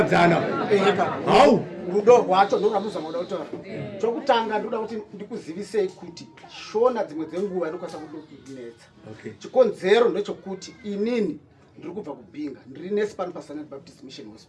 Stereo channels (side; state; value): both; identical; correlation 1.00